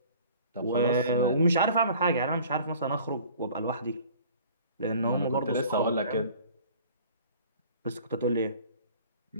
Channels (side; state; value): both; inverted; correlation -0.49